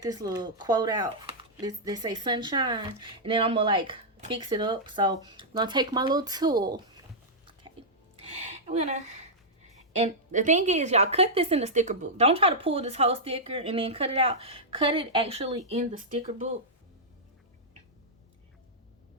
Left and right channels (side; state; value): both; normal; correlation -0.09